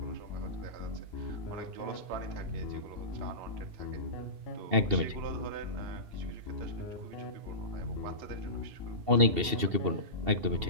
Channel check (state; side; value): late; left; 2.7 ms